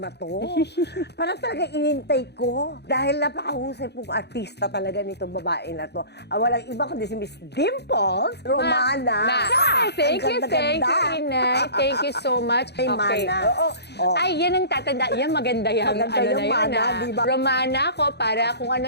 to. Parang talaga inintay ko. Dahil napakahusay pong artista talaga nitong babae na to. Walang iba kundi si Miss Dimples Romana. Ay, thank Ang you, ganda-ganda. Inay. Thank you so much. Ay, Mana. Oo. Ay, yan ang tatanda. Yan, maganda yan. Maganda yung na mana, yan, di ba? Romana ko para kung ano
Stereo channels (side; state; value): right; late; 0.49 ms